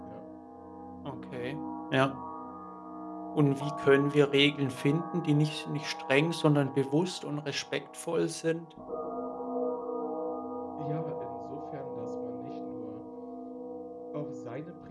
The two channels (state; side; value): identical; both; correlation 1.00